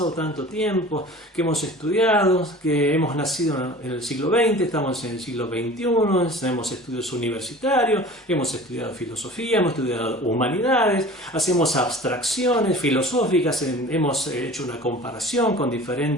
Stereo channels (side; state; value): both; normal; correlation 0.41